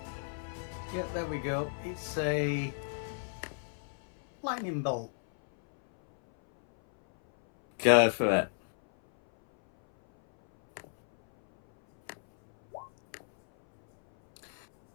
Yeah, there we go. It's a lightning bolt. Go for it.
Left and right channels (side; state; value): right; silent; 56 dB below the other